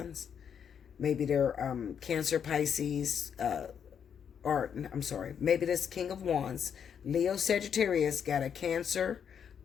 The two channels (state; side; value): quieter; right; 7.8 dB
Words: Maybe they're Cancer, Pisces, maybe this King of Wands, Leo, Sagittarius got a Cancer,